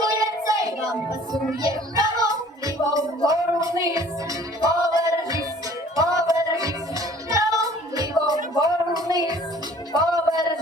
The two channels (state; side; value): normal; both; correlation 0.52